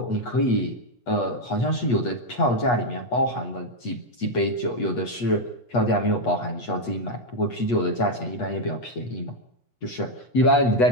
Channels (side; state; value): right; late; 8.3 ms